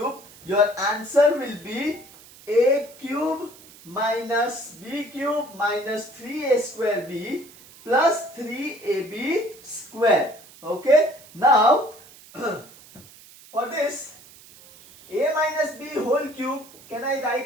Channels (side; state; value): right; noise; hiss, 22 dB below the sound